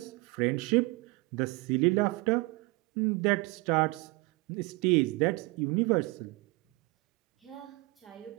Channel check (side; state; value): left; quieter; 25.4 dB